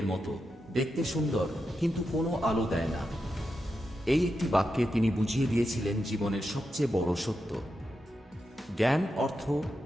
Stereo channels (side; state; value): both; normal; correlation 0.87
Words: মতো, দেখতে সুন্দর কিন্তু কোনো আলো দেয় না। এই একটি বাক্যে তিনি বুঝিয়ে দিয়েছিলেন জীবনের সবচেয়ে বড় সত্য। জ্ঞান, অর্থ,